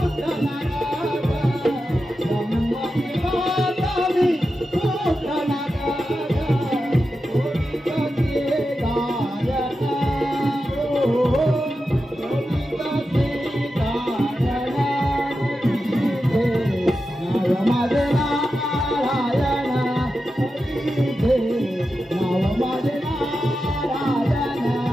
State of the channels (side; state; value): both; normal; correlation 0.90